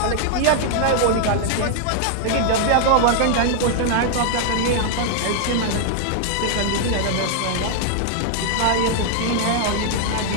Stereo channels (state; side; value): different; both; correlation -0.01